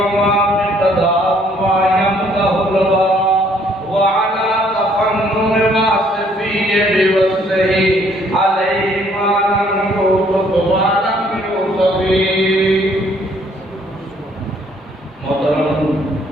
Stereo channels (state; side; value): normal; both; correlation 0.64